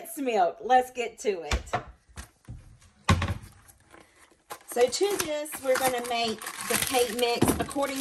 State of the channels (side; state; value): both; identical; correlation 1.00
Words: milk. Let's get to it. So to this, we're going to make the cake mix